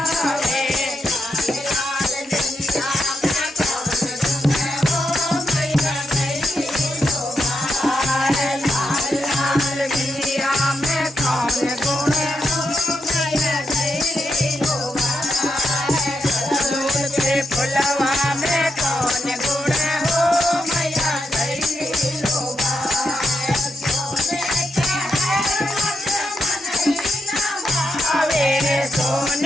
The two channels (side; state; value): both; normal; correlation 0.84